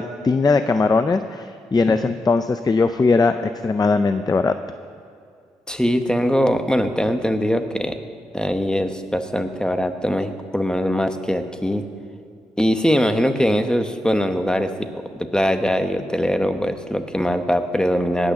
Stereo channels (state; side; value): normal; both; correlation 0.89